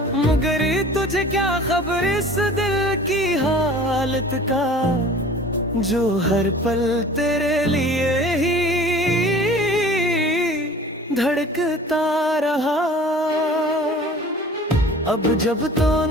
मगर तुझे क्या खबर इस दिल की हालत का, जो हर पल तेरे लिए ही धड़कता रहा। अब जब तो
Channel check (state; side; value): normal; both; correlation 0.45